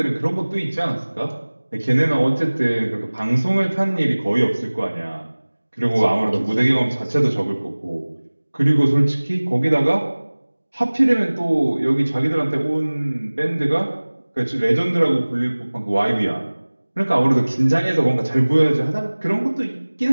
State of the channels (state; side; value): inverted; both; correlation -1.00